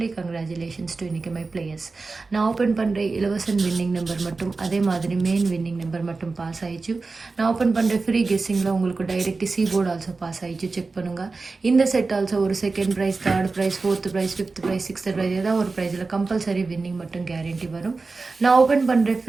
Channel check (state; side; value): quieter; left; 3.9 dB